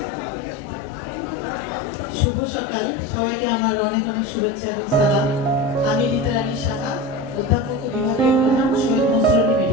শুভ সকাল। সবাইকে আমার অনেক অনেক শুভেচ্ছা এবং সালাম। আমি রিতা রানী সাহা, অধ্যাপক ও বিভাগীয় প্রধান, শহীদ মনসুর আলী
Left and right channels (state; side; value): normal; both; correlation 0.27